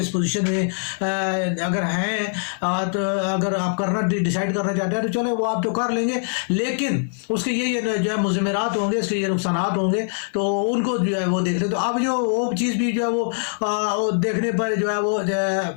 اس پوزیشن میں اگر ہیں تو اگر آپ کرنا ڈیسائیڈ کرنا چاہتے ہیں تو چلے وہ آپ تو کر لیں گے، لیکن اس کے یہ جو ہے مضمرات ہوں گے، اس کے یہ نقصانات ہوں گے، تو ان کو جو ہے وہ دیکھ لیں. تو اب جو وہ چیز بھی جو ہے وہ دیکھنے پر جو ہے وہ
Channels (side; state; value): right; silent; 64 dB below the other